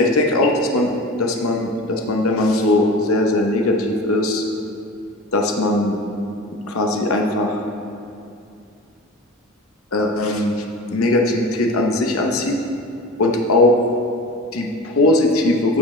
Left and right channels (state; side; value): normal; both; correlation 0.34